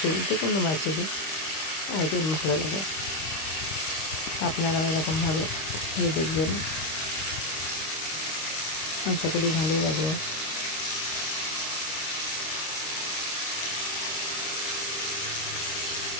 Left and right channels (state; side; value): late; right; 26 ms